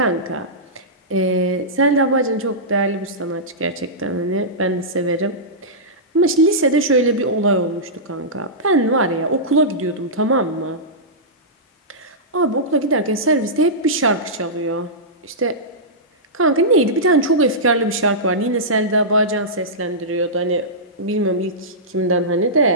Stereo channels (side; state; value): both; normal; correlation -0.15